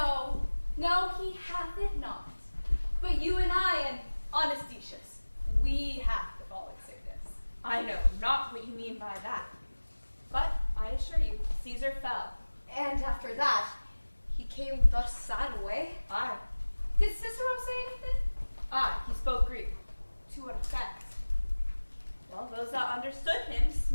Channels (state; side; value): inverted; both; correlation -1.00